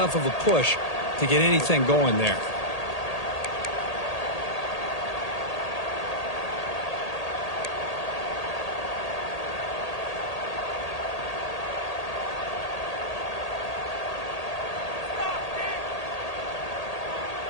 of a push to get anything going there.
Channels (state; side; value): late; right; 1.8 ms